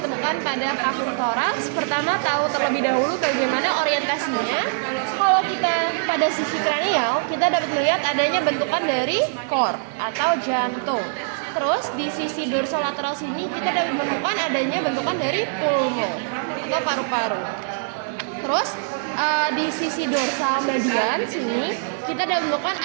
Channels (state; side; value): silent; left; digital silence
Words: pada vakum toraks. Pertama, tahu terlebih dahulu bagaimana orientasinya. Kalau kita pada sisi kranial, kita dapat melihat adanya bentukan dari core atau jantung. Terus di sisi dorsal lateral sini kita dapat menemukan adanya bentukan dari pulmo atau paru-paru. Terus di sisi dorsal median sini kita dapat menemukan